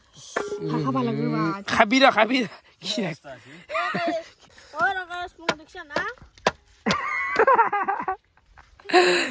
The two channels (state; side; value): identical; both; correlation 1.00